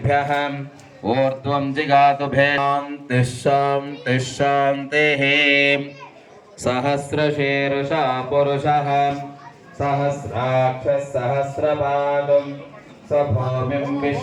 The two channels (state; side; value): identical; both; correlation 1.00